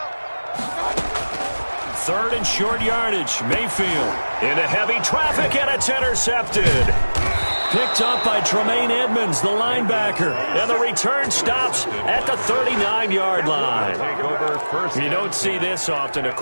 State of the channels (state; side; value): inverted; both; correlation -1.00